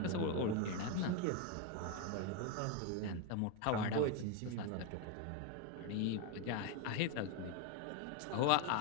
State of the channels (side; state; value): both; different; correlation 0.01